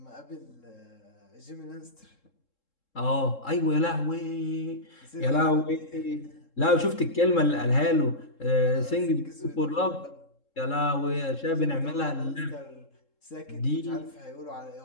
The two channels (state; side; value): late; right; 3.7 ms